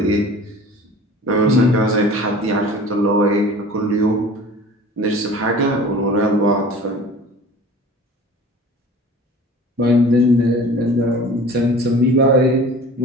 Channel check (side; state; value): both; normal; correlation 0.42